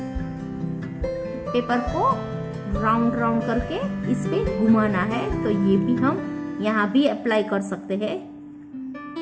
पेपर को राउंड राउंड करके इस पे घुमाना है, तो ये भी हम यहाँ भी अप्लाई कर सकते हैं।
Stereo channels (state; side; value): identical; both; correlation 1.00